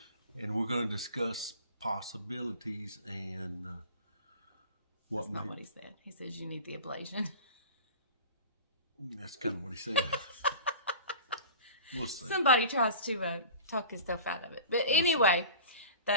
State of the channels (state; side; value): inverted; both; correlation -0.37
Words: And we're going to discuss possibilities and what That's not what he said. He says you need the ablation. That's kind of what he said. We'll see. Somebody tries to talk himself out of it. But anyway,